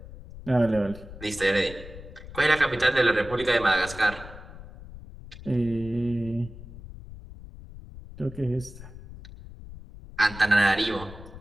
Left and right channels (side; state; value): left; noise; rumble, 15 dB below the sound